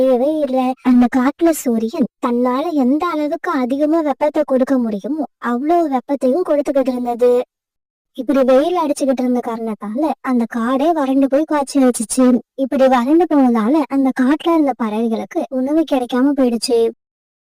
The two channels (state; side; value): identical; both; correlation 1.00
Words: இல்லை. அந்த காட்டுல சூரியன் தன்னால எந்த அளவுக்கு அதிகமா வெப்பத்தை கொடுக்க முடியுமோ அவ்வளவு வெப்பத்தையும் கொடுத்துக்கிட்டு இருந்தது. இப்படி வெயில் அடிச்சுக்கிட்டு இருந்த காரணத்தால அந்த காடே வறண்டு போய் காய்ச்சி வச்சுச்சு. இப்படி வறண்டு போனதால அந்த காட்டுல இருந்த பறவைகளுக்கு உணவு கிடைக்காம போயிடுச்சு.